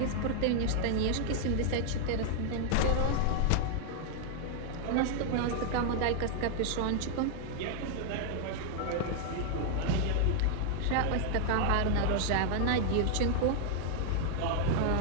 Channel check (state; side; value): different; both; correlation 0.00